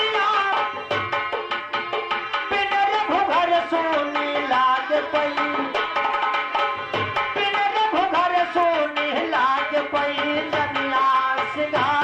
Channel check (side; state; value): both; identical; correlation 1.00